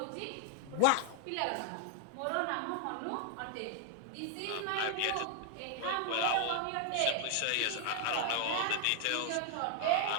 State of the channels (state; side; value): different; both; correlation 0.00